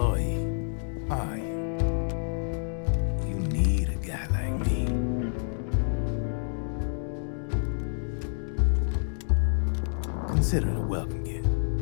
are you? You need a guy like me. Consider it a welcome gift.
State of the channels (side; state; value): right; silent; digital silence